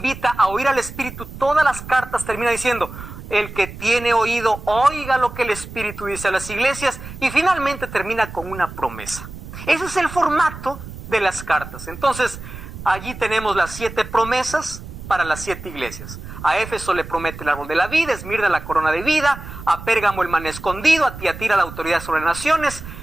a oír al Espíritu. Todas las cartas terminan diciendo el que tiene oído, oiga lo que el Espíritu dice a las iglesias. Y finalmente termina con una promesa. Ese es el formato de las cartas. Entonces, allí tenemos las 7 promesas. para las 7 iglesias. A Éfeso le promete el árbol de la vida, Esmirna la corona de vida, a Pérgamo el maná escondido, a Tiatira la autoridad sobre las naciones,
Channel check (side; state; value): right; noise; rumble, 13 dB below the sound